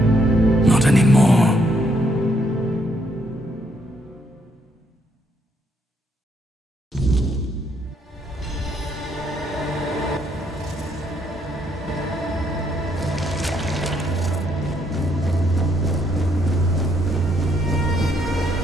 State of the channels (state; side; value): normal; both; correlation 0.72